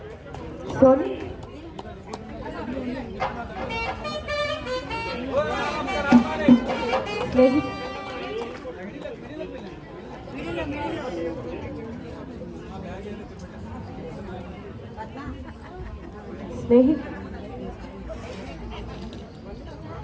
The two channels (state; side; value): identical; both; correlation 1.00